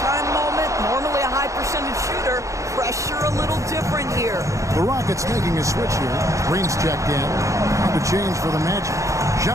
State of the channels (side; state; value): left; late; 0.15 ms